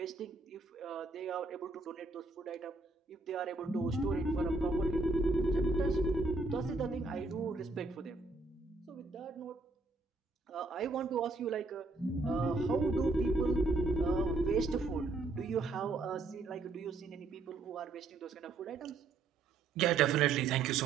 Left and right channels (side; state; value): left; quieter; 3.6 dB